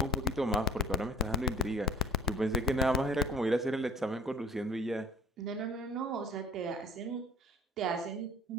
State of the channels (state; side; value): normal; both; correlation 0.49